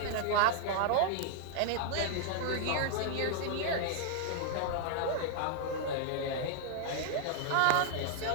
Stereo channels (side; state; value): both; different; correlation -0.01